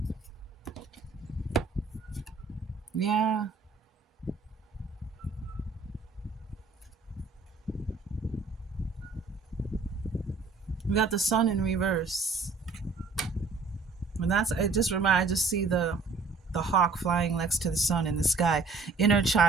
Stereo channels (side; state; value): left; quieter; 4.2 dB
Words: Yeah. We got the sun in reverse. And I just see the hawk flying next to the sun in the sky. Inner